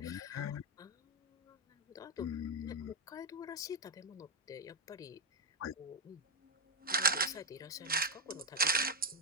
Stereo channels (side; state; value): both; normal; correlation 0.05